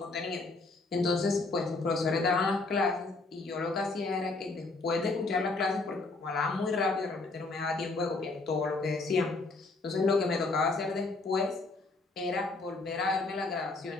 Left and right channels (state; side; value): quieter; right; 3.5 dB